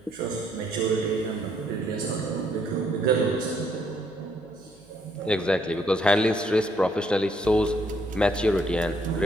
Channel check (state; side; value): noise; right; hum, 27 dB below the sound